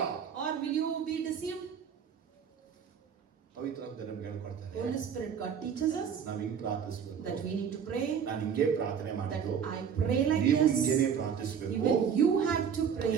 Or will you be deceived? ಪವಿತ್ರಾತ್ಮ ನಮ್ಗೆ ಹೇಳ್ಕೊಡ್ತಾರೆ. Holy Spirit, God teaches us ನಾವ್ ಹಿಂಗ್ ಪ್ರಾರ್ಥಿಸಬೇಕು. that we need to pray. ನಾನು ಹಿಂಗೆ ಪ್ರಾರ್ಥನೆ That ಮಾಡಿದ್ದು. I pray like ನೀವು this. ಹಿಂಗೇನೆ ಪ್ರಾರ್ಥಿಸಬೇಕು. Even you have to pray.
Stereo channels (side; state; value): left; quieter; 7.4 dB